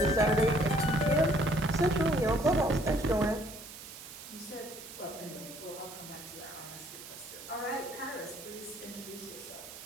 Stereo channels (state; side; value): noise; right; hiss, 14 dB below the sound